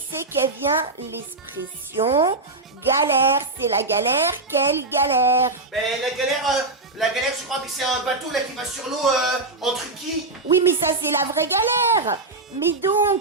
qu'elle vient l'expression galère? C'est la galère, quelle galère? Ben la galère, je crois que c'est un bateau là qui va sur l'eau en truquis. Oui, mais ça c'est la vraie galère. Mais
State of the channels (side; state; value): left; quieter; 3.3 dB